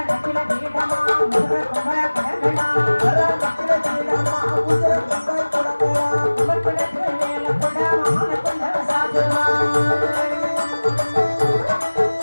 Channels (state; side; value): inverted; both; correlation -1.00